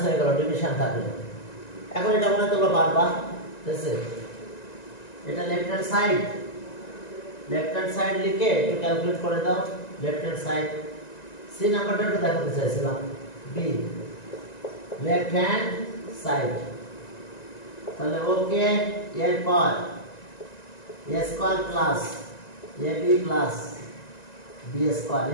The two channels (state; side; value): late; right; 1.9 ms